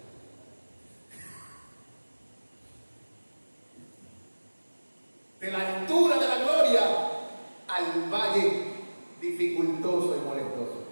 De la altura de la gloria al valle dificultoso y molestoso,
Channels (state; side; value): inverted; both; correlation -1.00